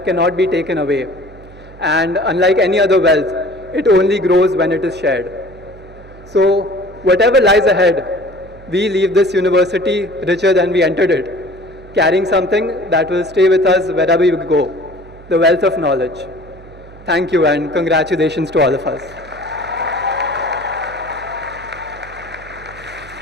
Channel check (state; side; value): noise; right; hum, 20 dB below the sound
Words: cannot be taken away. And unlike any other wealth, it only grows when it is shared. So whatever lies ahead, we leave this university richer than we entered it, carrying something that will stay with us wherever we go. The wealth of knowledge. Thank you and congratulations to all of us.